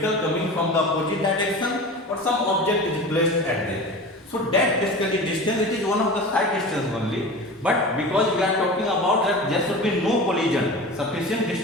coming from the opposite direction, or some object is placed at there. So that basically distance, it is one of the side distance only, but because we are talking about that there should be no collision, sufficient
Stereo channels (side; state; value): both; normal; correlation 0.33